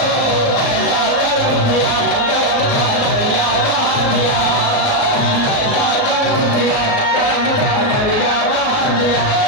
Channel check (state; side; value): late; right; 37 ms